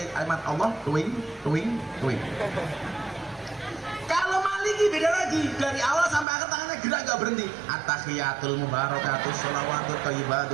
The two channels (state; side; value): drops out; left; at 6.2 s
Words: kalimat Allah tuing. Kalau Maliki beda lagi, dari awal sampai akhir tangannya gerak gak berhenti. Atahiyatul mubarakatuh salawatu